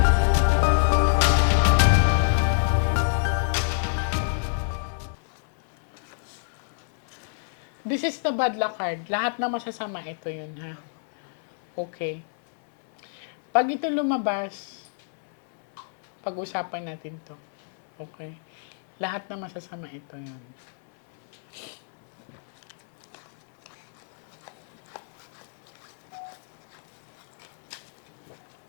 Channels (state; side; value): silent; right; 60 dB below the other